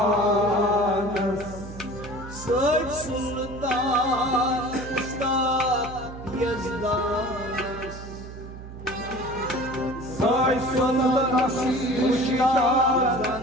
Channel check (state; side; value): noise; right; hum, 13 dB below the sound